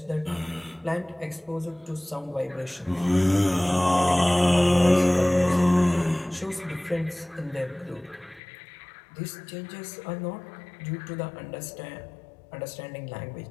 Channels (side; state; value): right; drops out; at 8.4 s